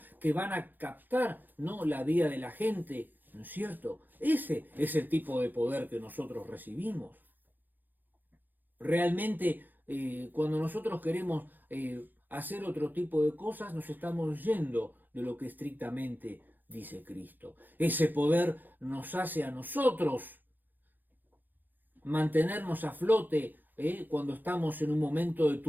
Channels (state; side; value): late; left; 0.087 ms